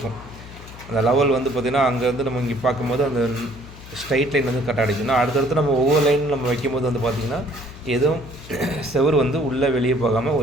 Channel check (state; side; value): noise; left; hum, 16 dB below the sound